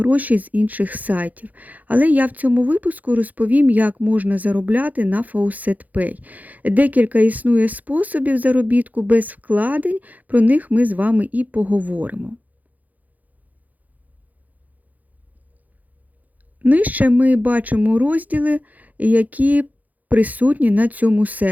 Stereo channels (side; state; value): left; late; 0.080 ms